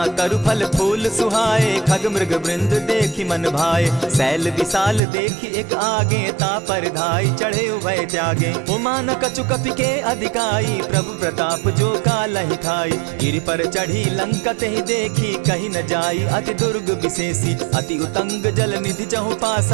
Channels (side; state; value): left; drops out; at 5.0 s